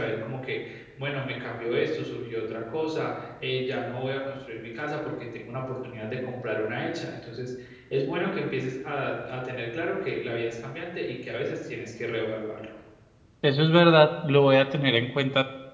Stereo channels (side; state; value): both; identical; correlation 1.00